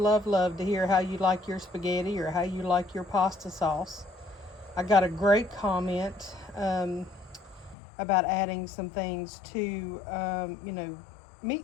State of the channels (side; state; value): right; drops out; at 7.8 s